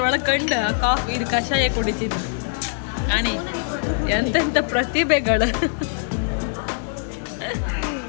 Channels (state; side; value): silent; right; 64 dB below the other